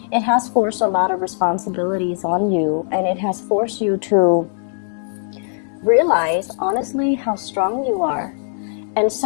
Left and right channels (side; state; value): right; silent; digital silence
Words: It has forced a lot of responsibilities on you, and it has forced you to realize, honestly, how strong you are. And